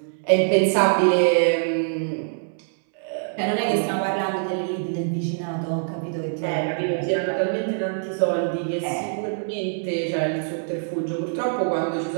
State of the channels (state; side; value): silent; left; 63 dB below the other